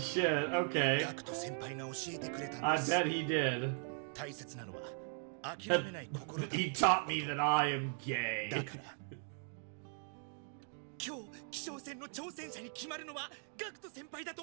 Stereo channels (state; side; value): silent; left; 52 dB below the other